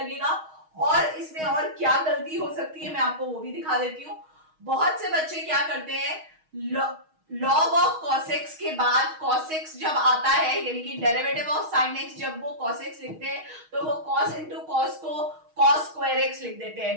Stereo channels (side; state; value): left; late; 6.4 ms